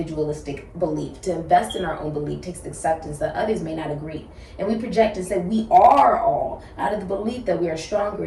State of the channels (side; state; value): both; identical; correlation 1.00